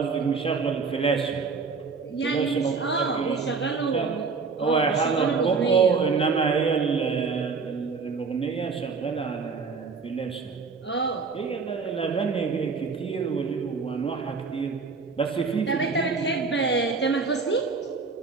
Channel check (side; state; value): left; quieter; 4.9 dB